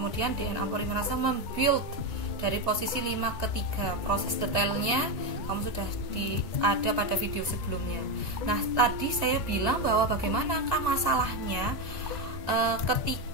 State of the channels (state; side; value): late; right; 2.0 ms